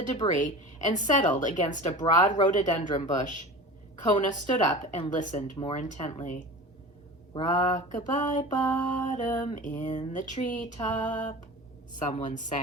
debris and settled against a broad rhododendron bush. Kona stood up and listened more intently. "Rock-a-bye bottom in the treetop," someone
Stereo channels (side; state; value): both; normal; correlation 0.34